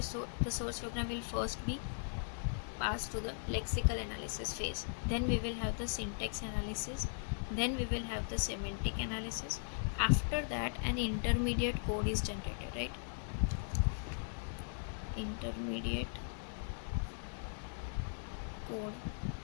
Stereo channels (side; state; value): right; silent; digital silence